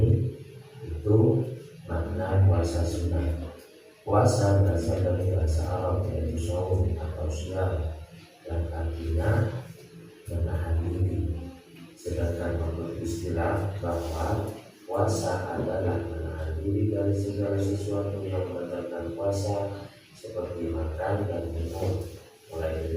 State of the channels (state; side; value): identical; both; correlation 1.00